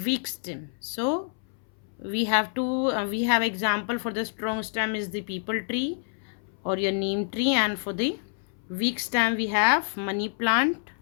weak stem. So we have example for the strong stem is the peepal tree or your neem tree, and for the weak stem we have money plant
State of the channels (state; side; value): silent; right; 60 dB below the other